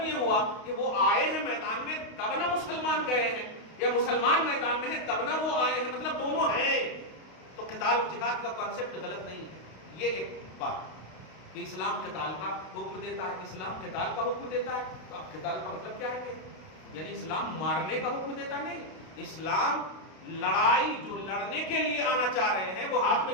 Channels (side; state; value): right; late; 32 ms